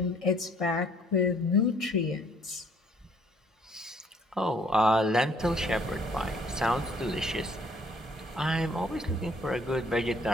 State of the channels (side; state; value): both; normal; correlation 0.61